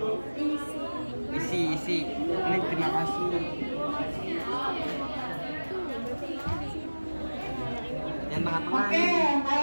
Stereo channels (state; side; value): inverted; both; correlation -1.00